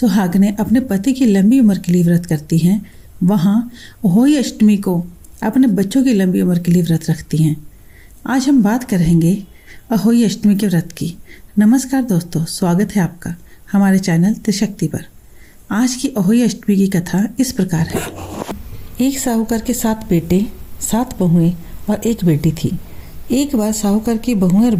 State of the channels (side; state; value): both; identical; correlation 1.00